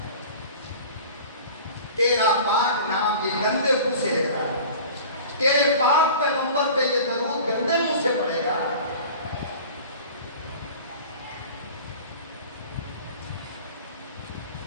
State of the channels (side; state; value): both; inverted; correlation -0.41